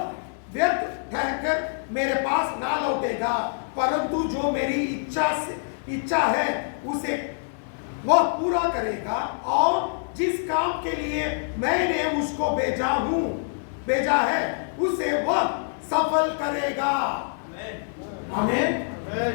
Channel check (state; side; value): silent; right; digital silence